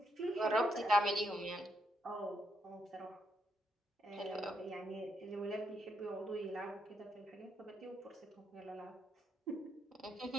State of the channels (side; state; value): both; normal; correlation 0.78